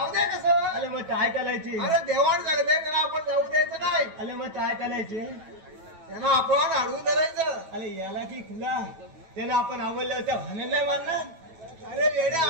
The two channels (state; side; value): late; left; 9.2 ms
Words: दे कसं. अरे मग काय चालायचे. अरे देवाण सांगते त्यांना आपण जाऊ द्यायचं नाही. अरे मग काय चालायचे त्यांना आपण अडवून धरायचं. अरे याला की खुला त्यानं आपण आवडलं त्या भाने नाही मारणार. अरे वेड्या